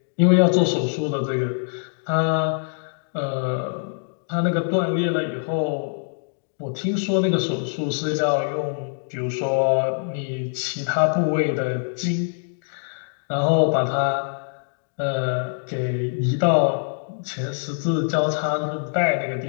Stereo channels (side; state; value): right; silent; digital silence